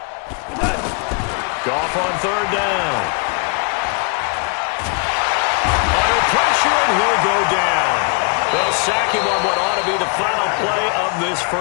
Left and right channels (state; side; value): quieter; right; 37.8 dB